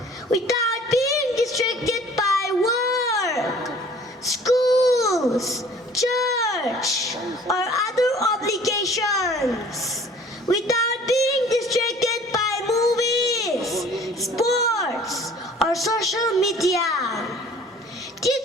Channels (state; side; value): normal; both; correlation 0.50